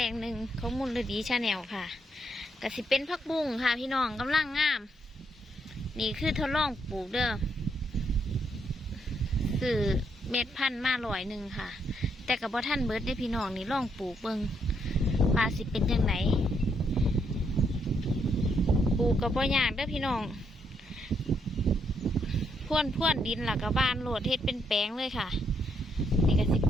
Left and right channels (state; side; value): normal; both; correlation 0.75